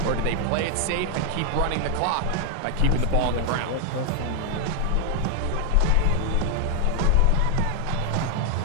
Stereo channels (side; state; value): both; different; correlation 0.00